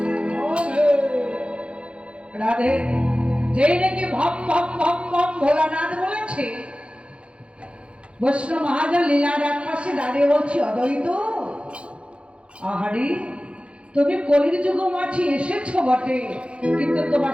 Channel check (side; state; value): left; late; 0.059 ms